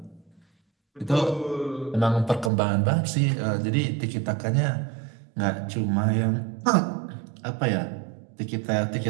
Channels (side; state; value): left; drops out; at 2.5 s